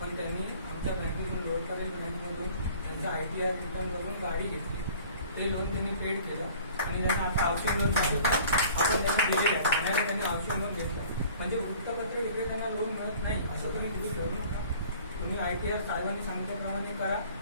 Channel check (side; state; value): both; inverted; correlation -0.49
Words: पण त्यांनी आमच्या बँकेतून लोकपाल बँकमधून त्यांचा ITR रिटर्न करून गाडी घेतली. ते लोन त्यांनी पेड केलं आणि त्यांना आता हाऊसिंग लोन झालं आपण त्यांना दिलेलं आहे. ठाण्याला त्यांनी हाऊसिंग लोन घेतलं. म्हणजे वृत्तपत्र विक्रेत्यांना लोन मिळत नाही असं तुम्ही तिथे करू नका. तुम्ही ITR साहेबांनी सांगितल्याप्रमाणे करा.